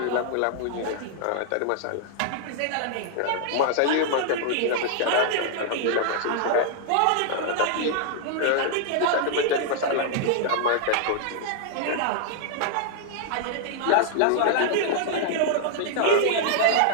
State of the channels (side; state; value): both; different; correlation -0.01